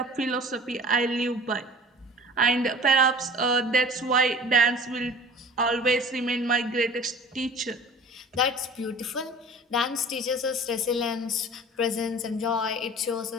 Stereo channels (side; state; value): both; normal; correlation 0.43